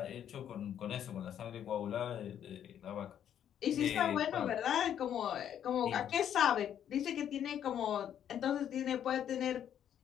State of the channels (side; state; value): right; quieter; 9.7 dB